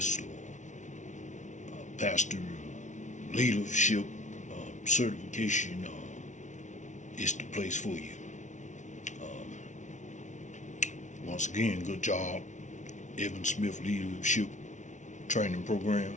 or pastor leadership certification is the place for you. Once again, good job, Evan Smith Leadership Training Program.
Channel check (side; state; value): right; late; 0.36 ms